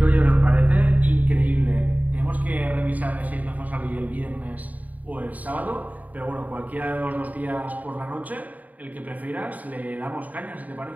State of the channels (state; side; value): late; left; 0.074 ms